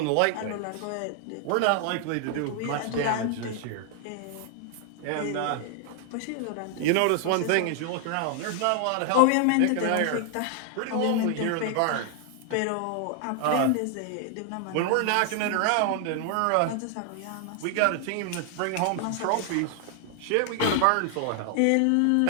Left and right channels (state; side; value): different; both; correlation 0.00